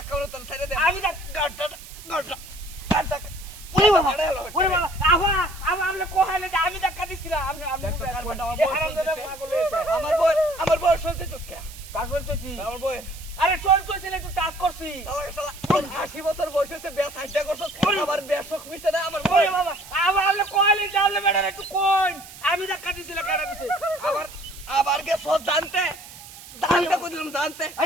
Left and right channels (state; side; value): noise; right; hiss, 17 dB below the sound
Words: বলে তোর ছেড়ে দে আমি গাটা ওরে বাবা আবা আমরা কোহালে যে আমি দেখা দিছিলাম আমি আমার বই চলতেছস কে কাজ চলতেছি আমার বই আরে চলতেছিল একটু টাচ করছি 80 বছর বয়স হইছে বেশ হাইটা করছস আবার বেশক মিছে না আমার বই বাবা আমরা কোহালে যাওলে বেড়া একটু কই আমি দেখা দিছিলাম কেডা দিছে আবার কে সব জানতে কইলাম জানতে